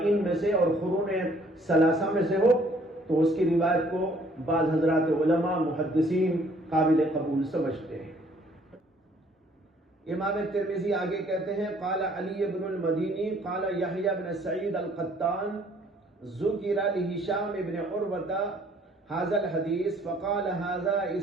میں سے اور قرون ثلاثہ میں سے ہو تو اس کی روایت کو بعض حضرات علماء محدثین قابل قبول سمجھتے ہیں۔ امام ترمذی آگے کہتے ہیں قال علی بن المدینی قال یحییٰ بن سعید القطان ذکر لہشام بن عروہ هذا الحديث فقال هذا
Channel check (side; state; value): both; normal; correlation 0.61